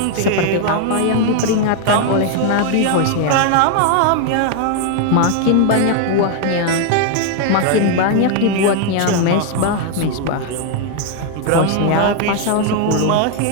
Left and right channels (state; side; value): different; both; correlation 0.00